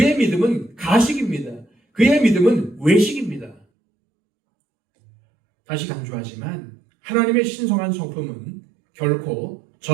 믿음은 가식입니다. 그의 믿음은 외식입니다. 다시 강조하지만 하나님의 신성한 성품은 결코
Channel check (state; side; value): drops out; left; at 3.7 s